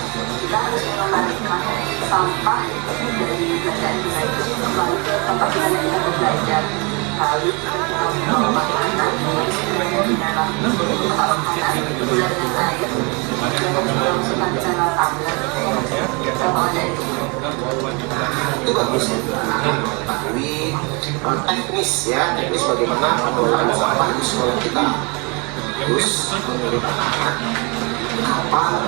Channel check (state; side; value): quieter; left; 30.8 dB